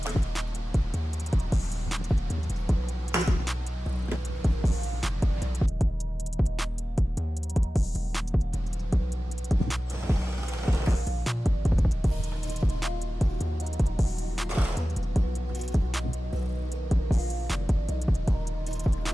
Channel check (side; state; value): both; normal; correlation 0.96